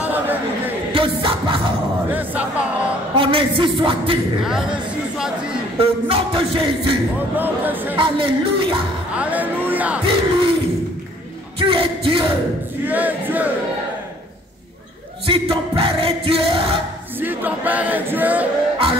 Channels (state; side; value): normal; both; correlation 0.58